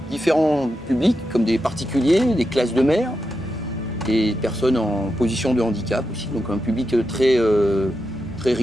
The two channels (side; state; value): both; normal; correlation 0.87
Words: différents publics, comme des particuliers, des classes de mer, des personnes en position de handicap aussi, donc un public très